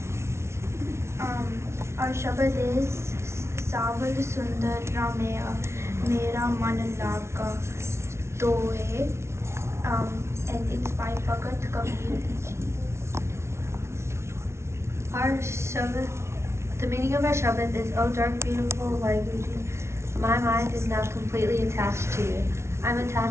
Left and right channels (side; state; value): left; late; 0.13 ms